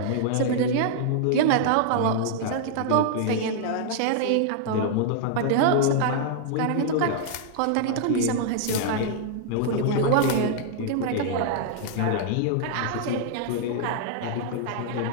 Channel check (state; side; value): different; both; correlation -0.01